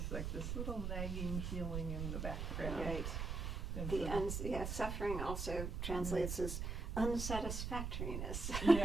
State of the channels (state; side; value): noise; right; rumble, 2 dB below the sound